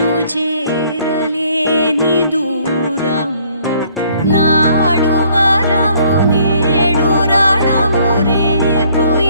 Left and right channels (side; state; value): both; inverted; correlation -0.62